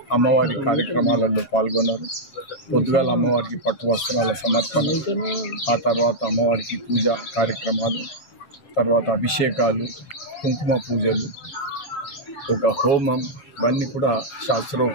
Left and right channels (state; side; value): late; right; 7.2 ms